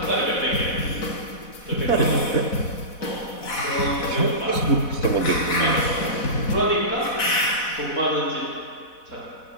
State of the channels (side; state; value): right; late; 4.1 ms